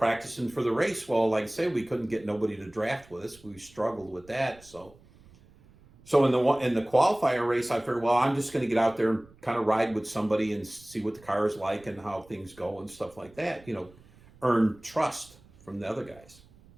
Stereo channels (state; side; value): noise; right; rumble, 26 dB below the sound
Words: for the race. Well, like I say, we couldn't get nobody to draft with us. We struggled with that. So in the qualifier race, I figured, well, I'm just going to get out there and kind of ride with somebody and see what the car is like and how things go and stuff like that. Earn trust from the other guys.